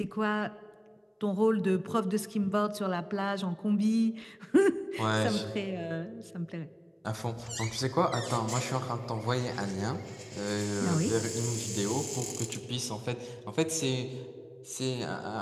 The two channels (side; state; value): both; identical; correlation 1.00